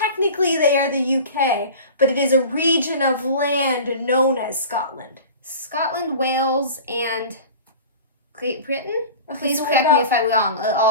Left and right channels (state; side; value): inverted; both; correlation -0.37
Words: they are the UK, but it is a region of land known as Scotland. Scotland, Wales, and Great Britain? Okay, Please so correct me if I'm wrong.